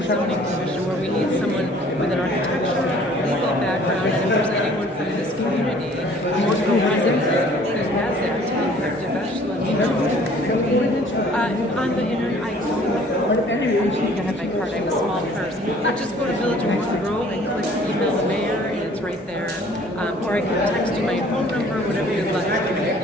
Zoning Commission where we need someone with an architectural, legal background, and if there's anyone from this community who represents who has that, Devesh, let me know. On the internet, I have my card. I have a small purse. Just go to Village of Morton Grove and click email the mayor, and it's right there. Or I can text you my phone number, whatever you'd like.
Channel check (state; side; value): normal; both; correlation 0.54